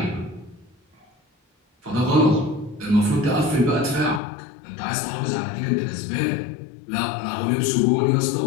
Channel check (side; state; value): right; drops out; at 4.2 s